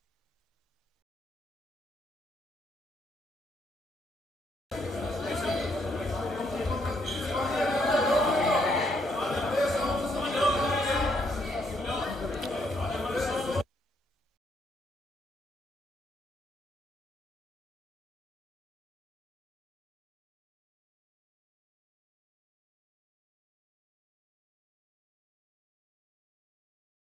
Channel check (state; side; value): normal; both; correlation 0.73